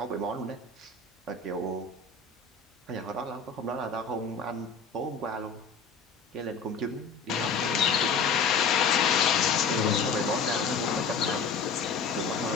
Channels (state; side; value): quieter; right; 5.1 dB